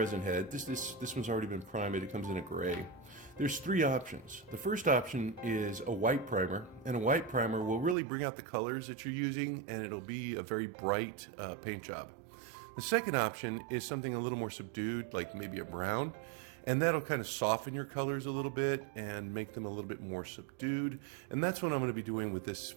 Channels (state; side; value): drops out; left; at 8.0 s